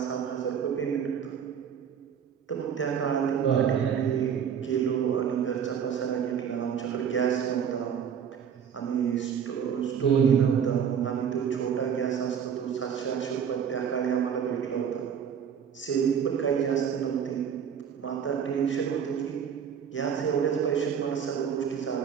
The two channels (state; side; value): quieter; left; 7.8 dB